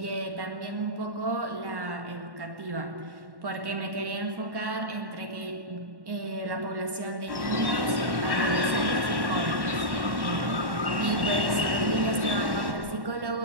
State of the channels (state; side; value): late; left; 1.1 ms